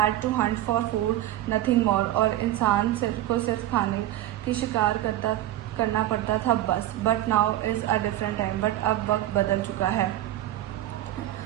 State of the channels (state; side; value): quieter; left; 14.0 dB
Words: to hunt for food, nothing more. और इंसान सिर्फ खाने की शिकार करना पड़ता था बस। But now is a different time. But अब वक्त बदल चुका है।